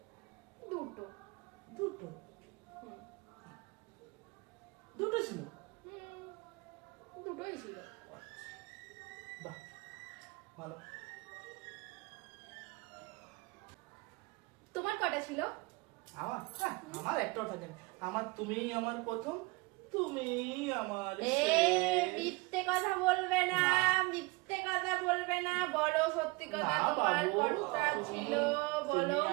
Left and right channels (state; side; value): quieter; left; 24.7 dB